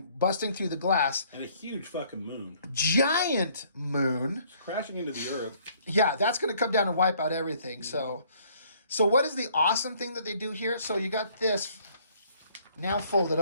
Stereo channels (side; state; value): both; inverted; correlation -0.62